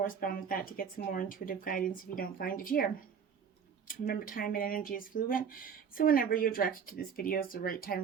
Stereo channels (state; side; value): quieter; left; 7.0 dB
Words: with that to get some more intuitive guidance if you don't find it here. Remember, time and energy is fluid, so whenever you're directed to this video is the right